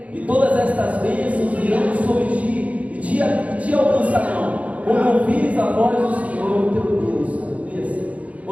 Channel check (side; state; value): left; late; 0.067 ms